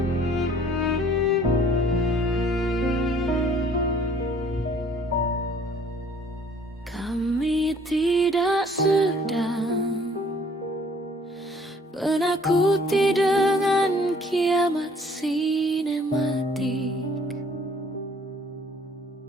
Kami tidak sedang menakuti dengan kiamat sinematik.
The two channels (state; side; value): normal; both; correlation 0.57